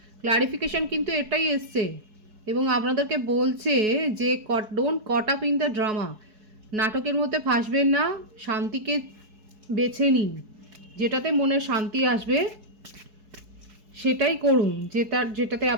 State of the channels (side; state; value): left; late; 4.7 ms